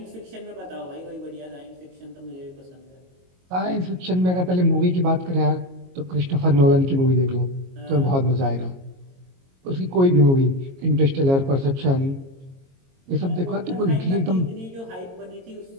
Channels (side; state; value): left; late; 22 ms